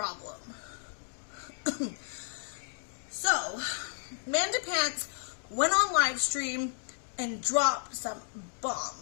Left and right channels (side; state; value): right; silent; digital silence